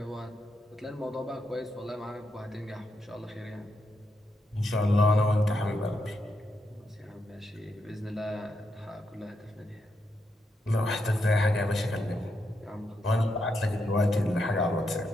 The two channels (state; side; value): normal; both; correlation 0.82